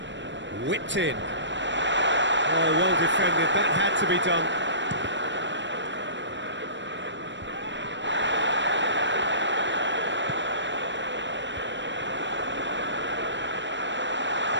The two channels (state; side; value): late; left; 0.53 ms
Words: Whipped in. Oh, well defended. That had to be done.